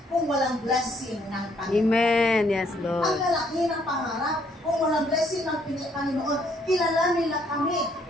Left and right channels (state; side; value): normal; both; correlation 0.68